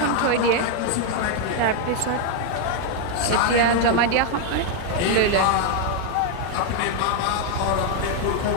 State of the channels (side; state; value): both; different; correlation 0.00